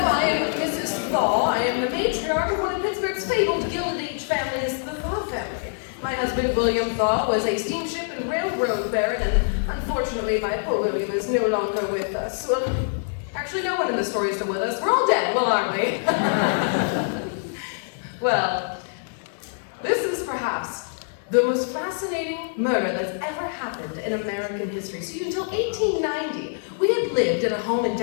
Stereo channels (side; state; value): right; silent; digital silence